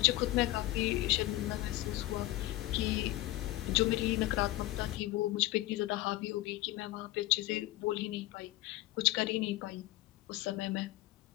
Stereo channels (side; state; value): right; quieter; 17.3 dB